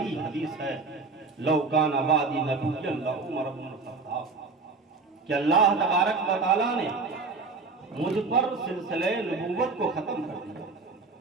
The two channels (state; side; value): quieter; left; 4.1 dB